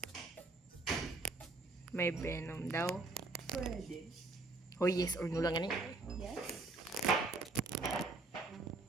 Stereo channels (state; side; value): quieter; left; 3.3 dB